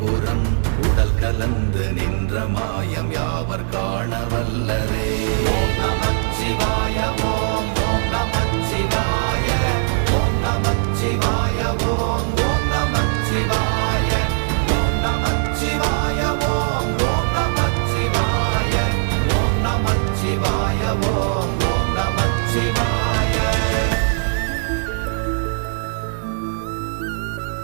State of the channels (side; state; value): left; silent; digital silence